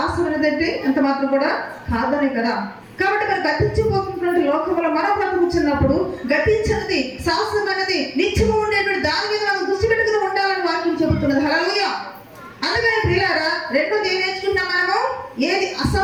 ఏదంటే ఎంత మాత్రం కూడా కాదనే కదా. కాబట్టి మరి గతించిపోతున్నటువంటి లోకంలో మనం బ్రతుకుతున్నప్పుడు గతించినది, శాశ్వతమైనది, నిత్యము ఉండేటువంటి దాని మీద మనం దృష్టి పెట్టుకుని ఉండాలని వాక్యం చెబుతున్నది. హల్లెలూయా. అందుకని ప్రియులారా, రెండోది ఏం నేర్చుకుంటాం మనము? ఏది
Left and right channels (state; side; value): identical; both; correlation 1.00